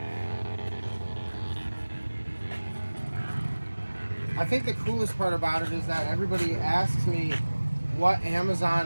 I think the coolest part about it is that everybody asks me what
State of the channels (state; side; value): inverted; both; correlation -1.00